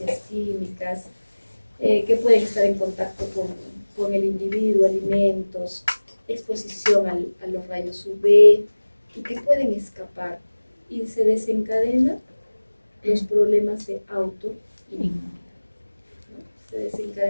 químicas, que pueden estar en contacto con el individuo, alimentos, exposición a los rayos UV, y que pueden escapar. Y se desencadenan los problemas de autoinmunidad, ¿no? Se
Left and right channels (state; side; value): inverted; both; correlation -1.00